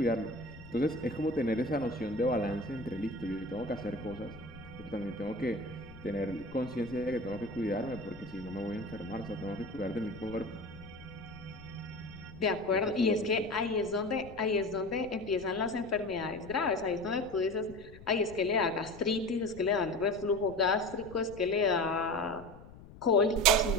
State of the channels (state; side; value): noise; left; rumble, 18 dB below the sound